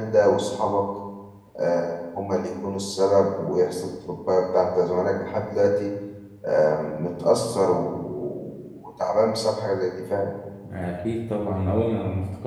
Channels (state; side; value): identical; both; correlation 1.00